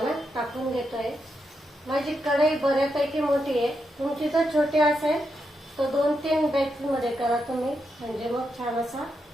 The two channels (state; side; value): normal; both; correlation 0.84